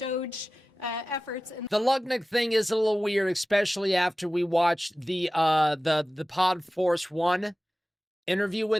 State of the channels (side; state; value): both; normal; correlation 0.96